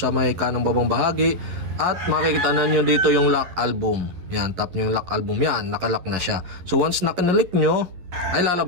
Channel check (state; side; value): late; left; 11 ms